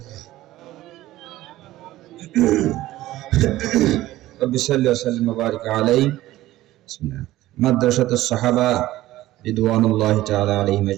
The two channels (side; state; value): left; quieter; 15.9 dB